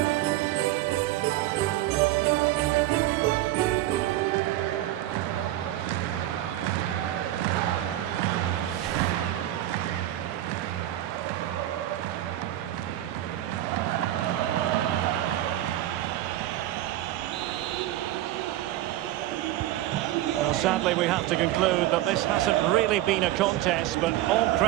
Sadly, we have to conclude that this hasn't really been a contest, but all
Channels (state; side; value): quieter; left; 14.5 dB